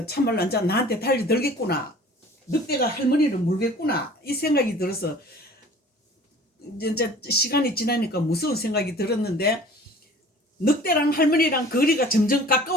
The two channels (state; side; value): normal; both; correlation 0.47